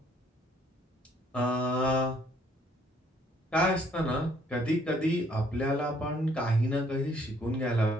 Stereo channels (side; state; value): both; normal; correlation 0.64